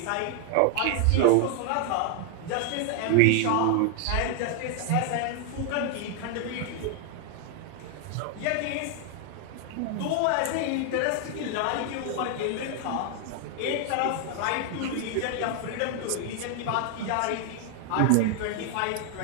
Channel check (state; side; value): different; both; correlation 0.00